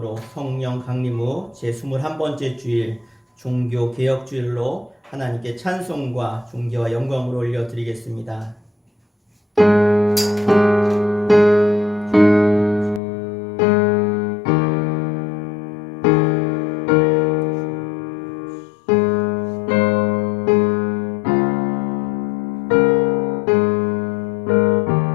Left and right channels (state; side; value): drops out; right; at 13.0 s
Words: 성령 강림 후 제21번째 주일 종교개혁주일로 하나님께 찬송과 존귀와 영광을 올려드리겠습니다.